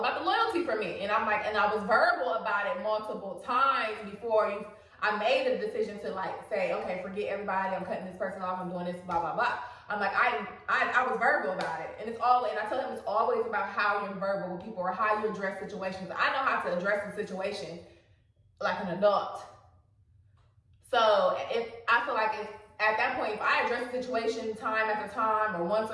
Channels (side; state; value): both; identical; correlation 1.00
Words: the loyalty for me. And I'm like, and I was verbal about it multiple times before I made a decision to, like, say, okay, forget everybody, I'm cutting this person off, I'm doing this, blah, blah, blah. I'm like, I was verbal about it. And I tell him it's always about how you're verbal with people or how you address situations. I know how to address a situation like an adult. So I feel like at that point, if I address the situation time after time or once